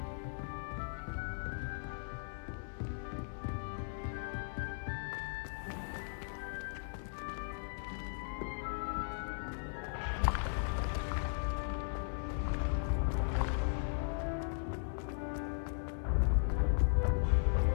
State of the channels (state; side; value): silent; right; 53 dB below the other